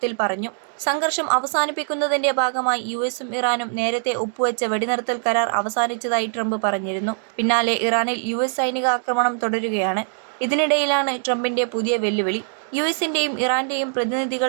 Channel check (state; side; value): silent; left; 64 dB below the other